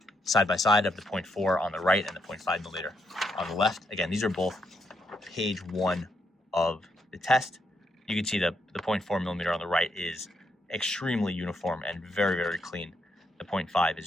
side by side of the 0.4 on the right and the 0.5 millimeter on the left. Again, these are both page 1 of the test. You can see the 0.4 millimeter on the right is extremely uniform and very, very clean. The 0.5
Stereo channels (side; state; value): both; normal; correlation 0.78